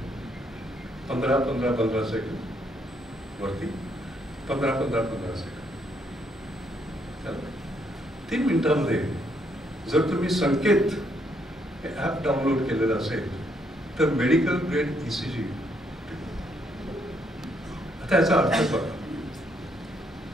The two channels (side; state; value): both; normal; correlation 0.72